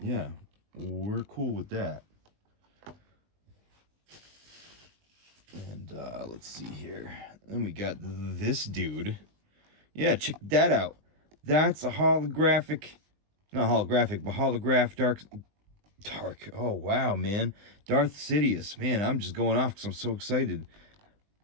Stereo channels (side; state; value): left; late; 20 ms